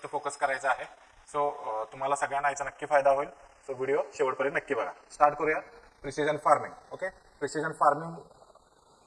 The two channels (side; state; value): both; identical; correlation 1.00